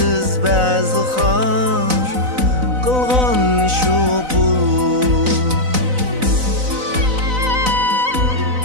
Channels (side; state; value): left; late; 4.0 ms